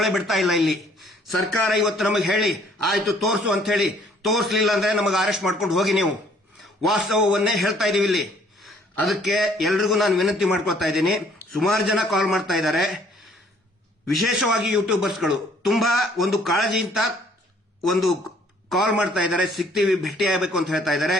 ಬಿಡ್ತಾ ಇಲ್ಲ. ಇಲ್ಲಿ ಸರ್ಕಾರ ಇವತ್ತು ನಮಗೆ ಹೇಳಿ ಆಯ್ತು ತೋರಿಸು ಅಂತ ಹೇಳಿ, ತೋರಿಸಲಿಲ್ಲ ಅಂದ್ರೆ ನಮಗೆ ಅರೆಸ್ಟ್ ಮಾಡ್ಕೊಂಡು ಹೋಗಿ. ನೀವು ವಾಸ್ತವವನ್ನೇ ಹೇಳ್ತಾ ಇದೀವಿ ಇಲ್ಲಿ. ಅದಕ್ಕೆ ಎಲ್ರಿಗೂ ನಾನು ವಿನಂತಿ ಮಾಡ್ಕೊಳ್ತಾ ಇದ್ದೀನಿ. ಸುಮಾರು ಜನ ಕಾಲ್ ಮಾಡ್ತಾ ಇದ್ದಾರೆ, ವಿಶೇಷವಾಗಿ ಯೂಟ್ಯೂಬರ್ಸ್ಗಳು ತುಂಬಾ ಒಂದು ಕಾಳಜಿಯಿಂದ ಒಂದು ಕಾಲ್ ಮಾಡ್ತಾ ಇದ್ದಾರೆ, ಸಿಗ್ತೀವಿ, ಭೇಟಿ ಆಗಬೇಕು ಅಂತ ಹೇಳ್ತಾ ಇದ್ದಾರೆ.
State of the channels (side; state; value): both; normal; correlation 0.61